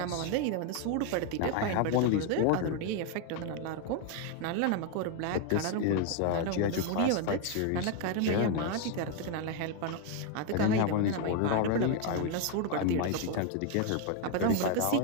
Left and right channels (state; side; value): different; both; correlation 0.01